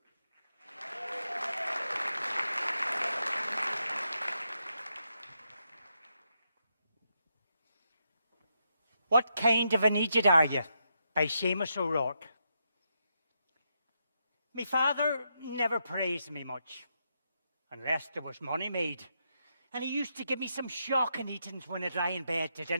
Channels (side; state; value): both; inverted; correlation -0.82